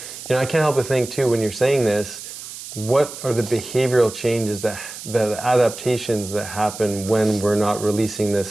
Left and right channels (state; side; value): noise; right; hiss, 12 dB below the sound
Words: know, I can't help but think too, when you're saying this, what are the behavioral changes, the adaptations that happen when we're not releasing